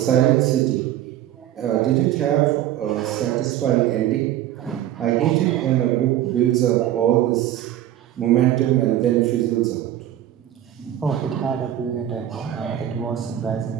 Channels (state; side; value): quieter; left; 12.3 dB